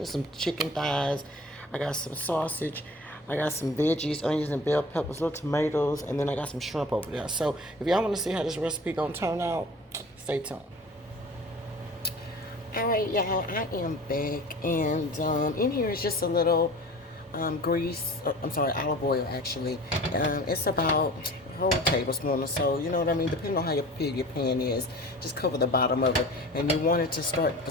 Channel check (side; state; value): both; normal; correlation 0.41